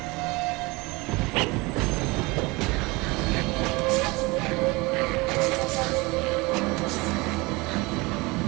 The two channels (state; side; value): quieter; left; 24.3 dB